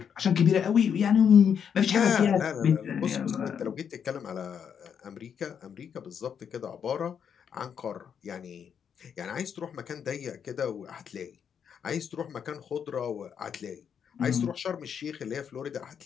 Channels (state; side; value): quieter; right; 7.7 dB